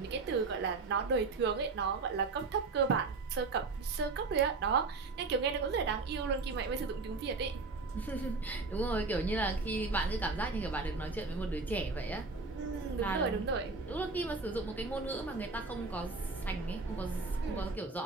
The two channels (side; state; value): left; quieter; 4.0 dB